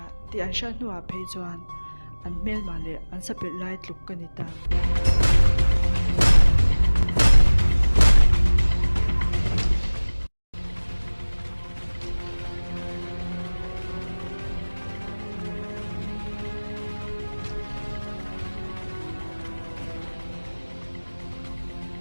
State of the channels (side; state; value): both; inverted; correlation -1.00